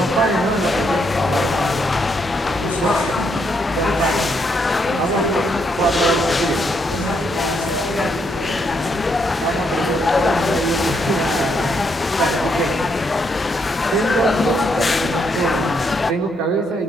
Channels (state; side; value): normal; both; correlation 0.75